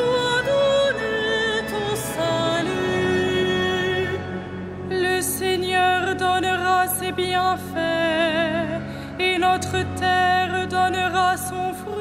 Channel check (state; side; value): identical; both; correlation 1.00